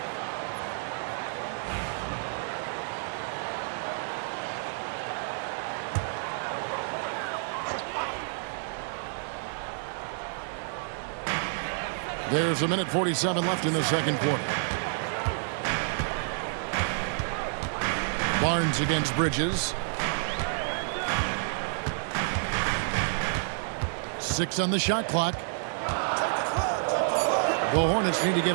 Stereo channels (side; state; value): left; silent; 58 dB below the other